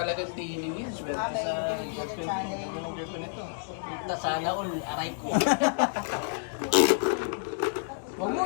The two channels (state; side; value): silent; right; 58 dB below the other